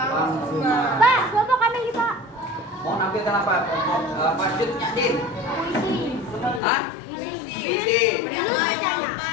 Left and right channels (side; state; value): right; drops out; at 6.6 s